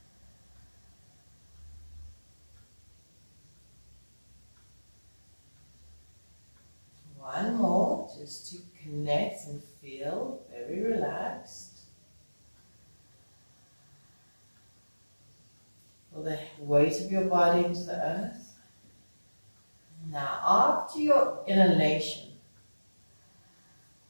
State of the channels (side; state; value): both; inverted; correlation -1.00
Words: One more, just to connect and feel very relaxed. Feel the weight of your body into the earth. Now, after your inhalation,